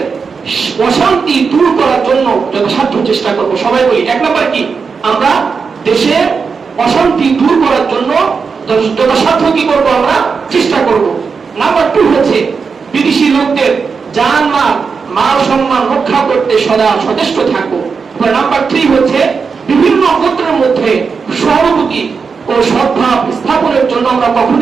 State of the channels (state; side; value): quieter; left; 5.3 dB